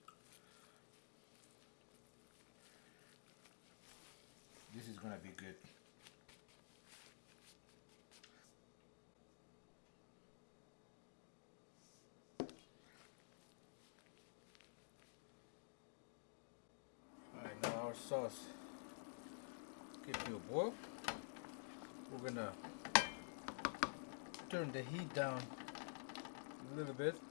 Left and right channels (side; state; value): right; silent; digital silence